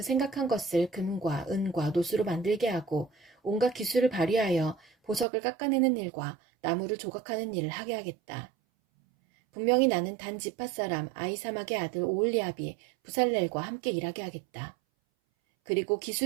생각한 것을 금과 은과 노수로 만들게 하고 온갖 기술을 발휘하여 보석을 깎아내는 일과 나무를 조각하는 일을 하게 하겠다. 분명히 나는 단 지파 사람 아이사막의 아들 오홀리압이 부살렐과 함께 일하게 하겠다. 그리고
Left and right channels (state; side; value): drops out; left; at 5.2 s